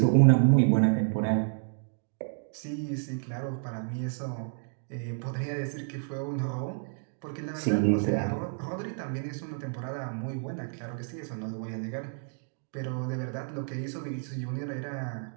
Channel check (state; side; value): silent; left; 58 dB below the other